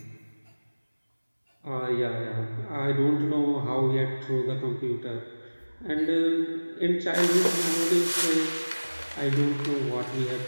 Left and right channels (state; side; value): inverted; both; correlation -1.00